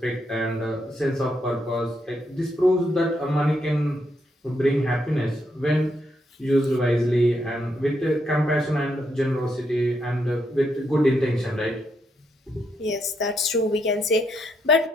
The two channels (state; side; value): normal; both; correlation 0.78